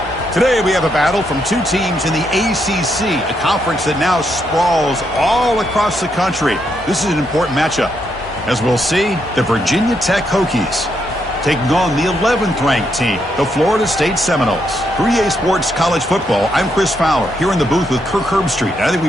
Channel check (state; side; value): normal; both; correlation 0.78